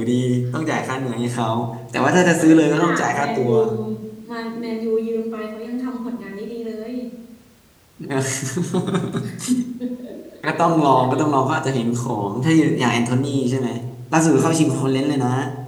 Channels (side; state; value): both; identical; correlation 1.00